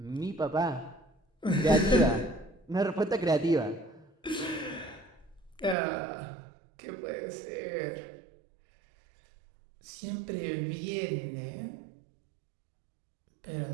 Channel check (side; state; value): left; drops out; at 5.8 s